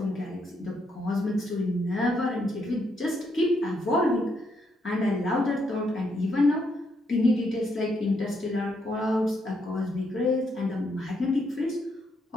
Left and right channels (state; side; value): normal; both; correlation 0.76